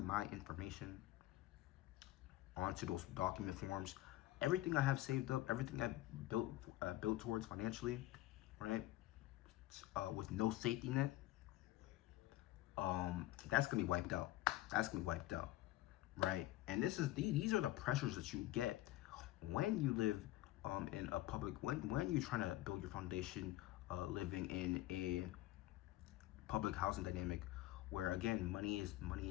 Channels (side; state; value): right; quieter; 16.2 dB